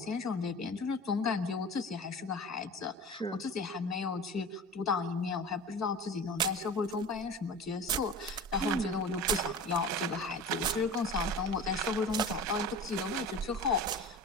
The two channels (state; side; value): normal; both; correlation 0.35